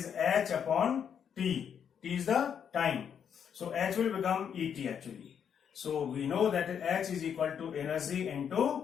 h upon t. T is the time. So h will become Et actually. So we know that h is equal to energy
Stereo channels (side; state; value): right; quieter; 7.9 dB